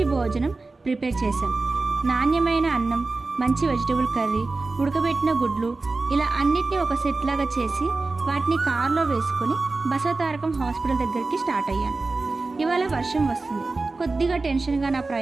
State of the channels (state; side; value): quieter; left; 3.6 dB